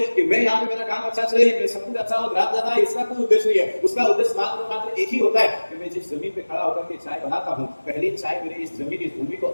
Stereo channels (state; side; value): inverted; both; correlation -1.00